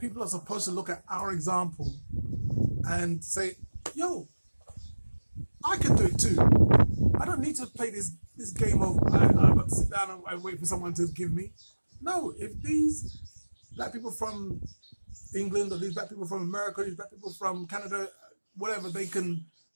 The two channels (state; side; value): inverted; both; correlation -1.00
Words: are supposed to look at our example and say, yo, I can do it too. I don't need to play this game of I've got to sit down and wait for someone to give me. No, if these black people from England, or these black people from America, these black people from Canada, whatever, they can